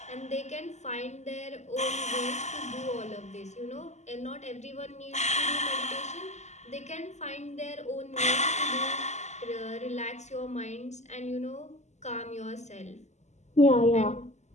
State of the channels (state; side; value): late; right; 0.33 ms